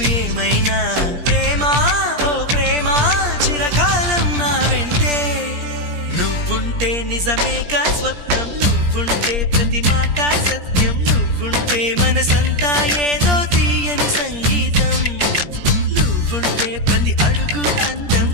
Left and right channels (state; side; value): late; left; 17 ms